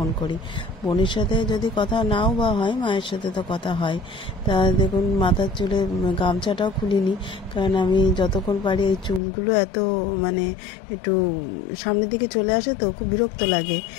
করি। বোনের সাথে যদি কথা নাও বা হয়, মায়ের সাথে তো কথা হয়। তা দেখুন মাথার চুলে গামছাটাও খুলিনি, কারণ আমি যতক্ষণ পারি এই চুলগুলো এত মানে একটু সামনের দিকে চলে আসে তো খুব বিরক্ত লাগে।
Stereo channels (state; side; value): drops out; right; at 9.2 s